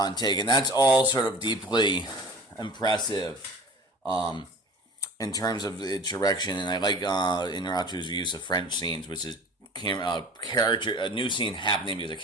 and that's all sort of deeply impressive. In terms of its direction, and I like Inarritu's use of French scenes, which is a new scene happening because a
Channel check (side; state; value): both; normal; correlation 0.41